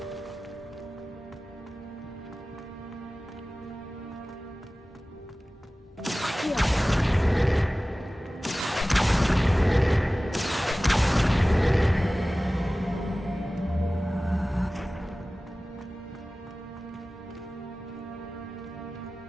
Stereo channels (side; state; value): both; normal; correlation 0.97